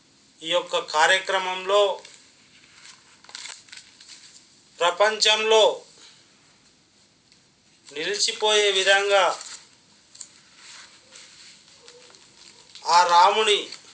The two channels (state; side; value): identical; both; correlation 1.00